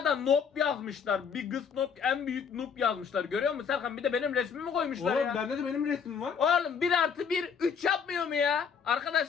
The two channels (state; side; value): quieter; right; 6.6 dB